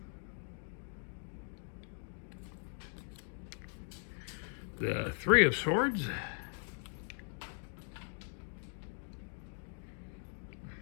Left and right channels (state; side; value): silent; right; 51 dB below the other